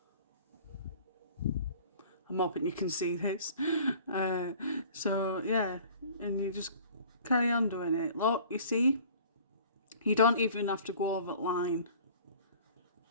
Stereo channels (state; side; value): inverted; both; correlation -0.48